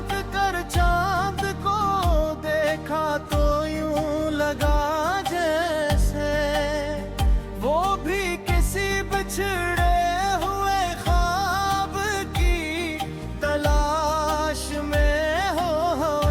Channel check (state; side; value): identical; both; correlation 1.00